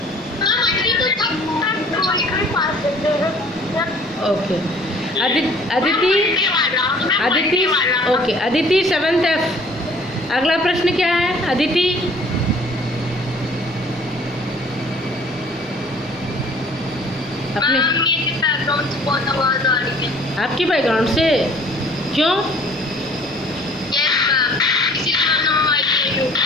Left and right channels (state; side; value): normal; both; correlation 0.53